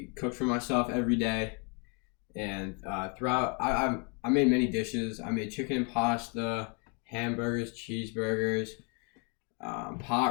cook for myself every day, and throughout, I made many dishes. I made chicken and pasta, hamburgers, cheeseburgers,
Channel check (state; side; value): quieter; right; 35.4 dB